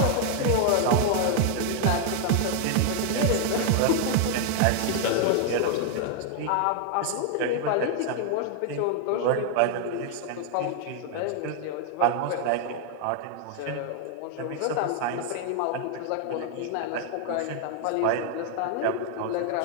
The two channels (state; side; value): different; both; correlation 0.00